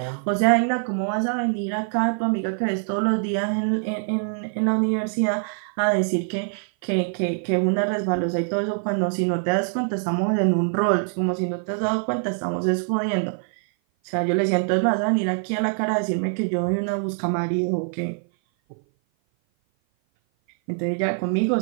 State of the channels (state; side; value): silent; left; 56 dB below the other